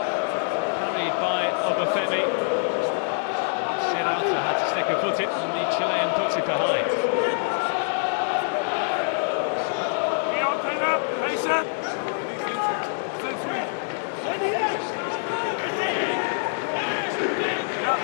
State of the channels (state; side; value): silent; right; 62 dB below the other